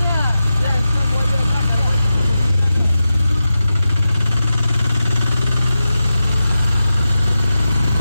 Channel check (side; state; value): both; inverted; correlation -0.92